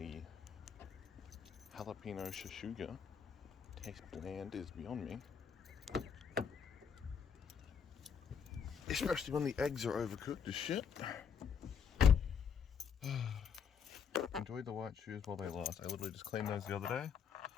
jalapeno shashuga taste bland is beyond me. Especially when the eggs are overcooked as shit. Enjoy the white shoes while they last. I literally just cleaned those the other day,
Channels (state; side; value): quieter; right; 6.9 dB